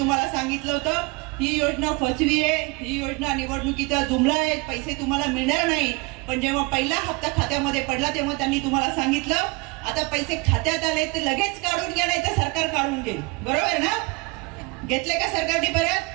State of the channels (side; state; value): left; quieter; 27.1 dB